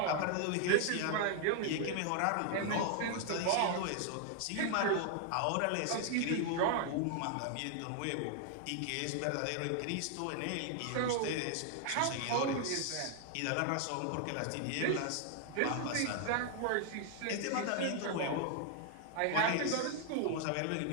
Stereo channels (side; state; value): both; different; correlation 0.00